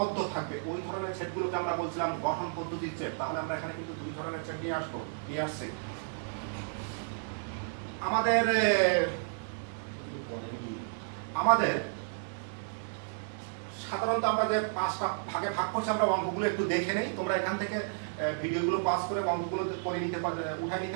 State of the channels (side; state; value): left; silent; digital silence